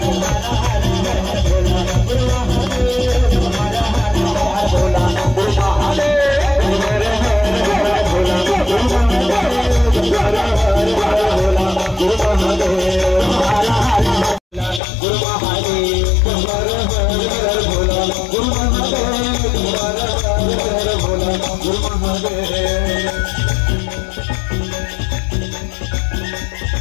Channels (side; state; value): right; drops out; at 14.8 s